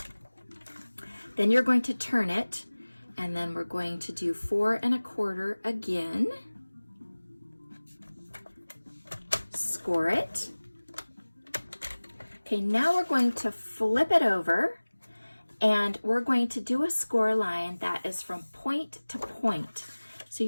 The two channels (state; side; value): inverted; both; correlation -1.00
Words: Then you're going to turn it, and then we're going to do 4 1/4 again. Score it. Okay, now we're going to flip it over, and we're going to do a score line that is from point to point. So